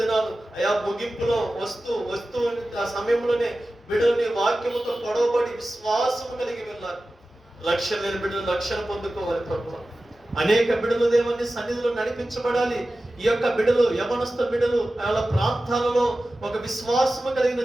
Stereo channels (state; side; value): normal; both; correlation 0.95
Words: అయా ముగింపులో వస్తూ ఆ సమయంలోనే బిడ్డలు నీ వాక్యముతో పొడవబడి విశ్వాసము కలిగి వెళ్ళాలి. లక్ష్యం లేని బిడ్డలు లక్ష్యం పొందుకోవాలి ప్రభువా. అనేక బిడ్డలు దేవుని సన్నిధిలో నడిపించబడాలి. ఈ యొక్క బిడ్డలు, యవనస్థ బిడ్డలు వాళ్ళ ప్రాంతాలలో ఒక విశ్వాసము కలిగిన